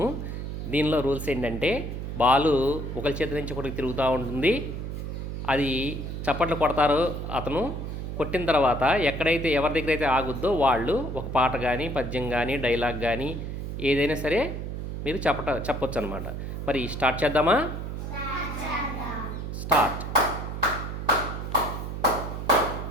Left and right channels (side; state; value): right; noise; hum, 5 dB below the sound